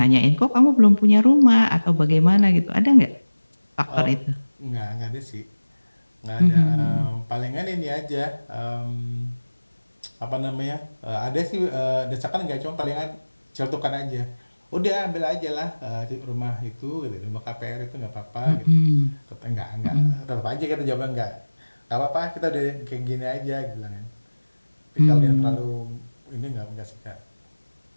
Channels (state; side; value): inverted; both; correlation -1.00